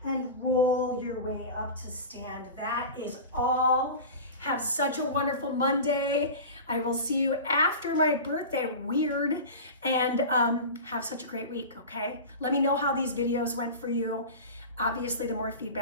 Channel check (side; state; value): both; inverted; correlation -0.31